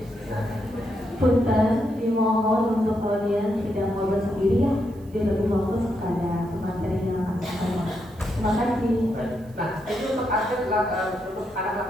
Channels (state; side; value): noise; right; hiss, 29 dB below the sound